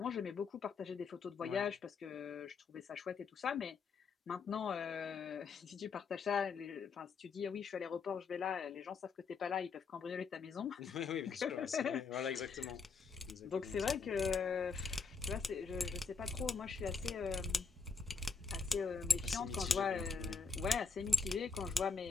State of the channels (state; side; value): quieter; right; 5.1 dB